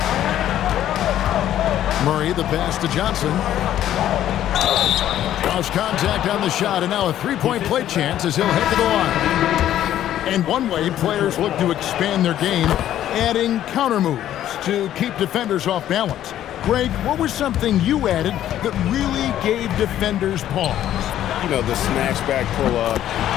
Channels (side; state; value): right; quieter; 11.9 dB